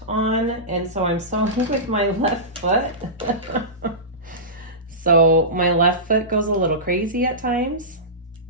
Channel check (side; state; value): both; normal; correlation -0.19